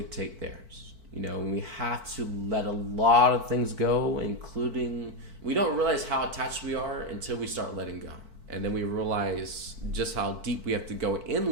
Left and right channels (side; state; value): left; late; 4.5 ms